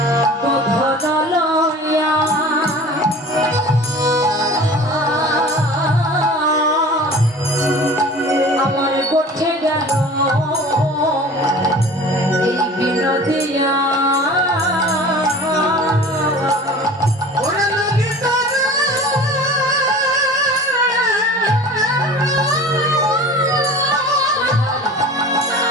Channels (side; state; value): both; normal; correlation 0.41